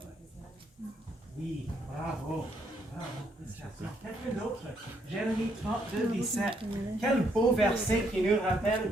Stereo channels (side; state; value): both; normal; correlation 0.72